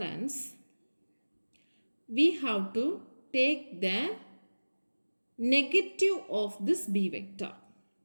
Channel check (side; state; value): both; inverted; correlation -1.00